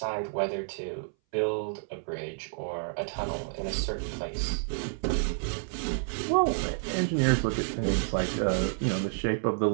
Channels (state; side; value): silent; left; 58 dB below the other